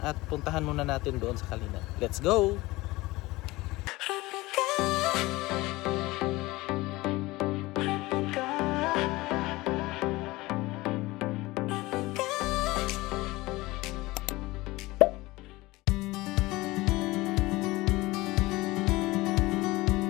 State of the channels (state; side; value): quieter; right; 20.4 dB